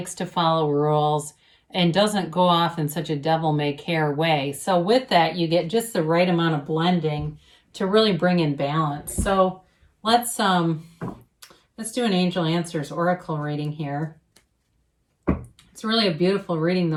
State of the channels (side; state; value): both; identical; correlation 1.00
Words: to follow rules, and doesn't go off in such a devil-may-care way. So with that, you get just the right amount of blending to really bring in balance. So let's do an Angel Answers Oracle reading here. It's really a beautiful reading